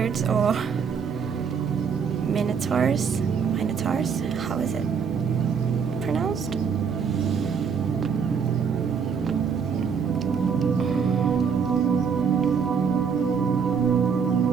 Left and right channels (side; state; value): left; quieter; 6.4 dB